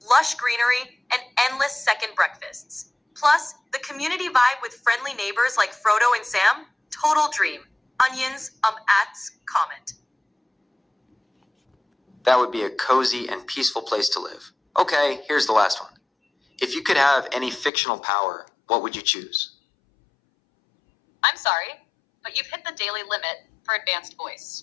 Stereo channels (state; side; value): drops out; right; at 17.7 s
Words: lush greenery, and endless second breakfasts. Plus, the community vibe with friendly neighbors like Frodo and Sam, total dream. Onions, comment. That would be a cozy and peaceful place to live. Okay, here's the last one. If you could have any fictional power, what would you choose? I'm sorry, but you've hit the daily limit for advanced voice.